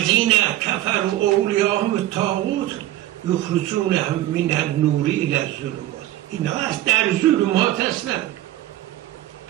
کفروا اولیاءهم الطاغوت یخرجونهم من النور الی الظلمات. اینا از در ظلمات هستن.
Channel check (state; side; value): quieter; left; 14.7 dB